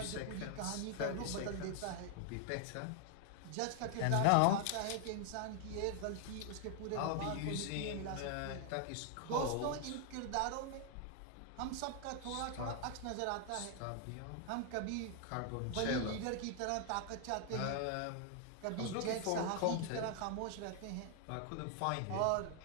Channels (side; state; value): both; different; correlation 0.00